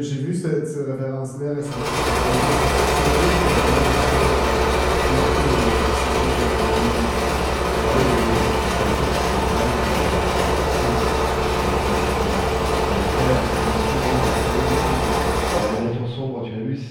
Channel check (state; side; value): identical; both; correlation 1.00